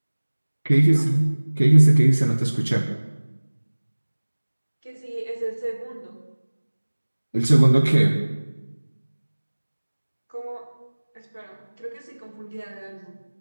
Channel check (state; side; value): inverted; both; correlation -1.00